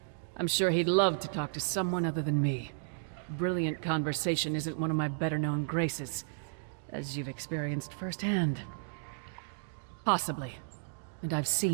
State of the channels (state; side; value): silent; left; digital silence